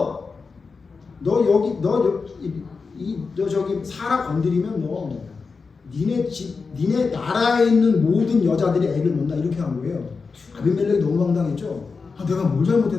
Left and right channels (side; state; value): right; quieter; 4.7 dB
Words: 저기 사라 건드리면 너 니네 나라에 있는 모든 여자들이 애를 못 낳아 이렇게 한 거예요. 아비멜렉이 너무 황당했죠. 내가 뭘